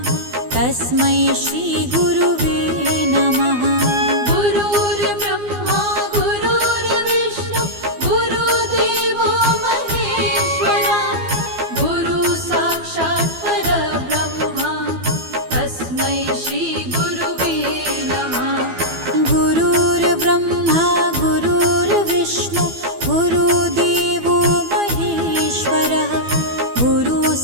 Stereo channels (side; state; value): left; late; 12 ms